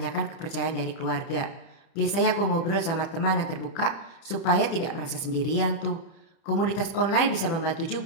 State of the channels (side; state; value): right; late; 30 ms